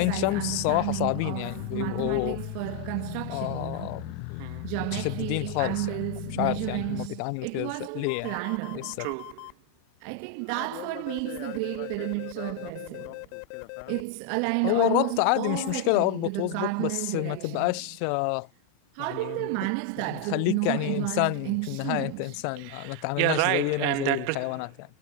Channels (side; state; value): both; different; correlation 0.01